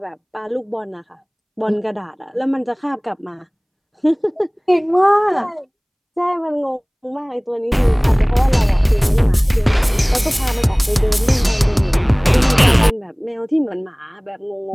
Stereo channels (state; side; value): identical; both; correlation 1.00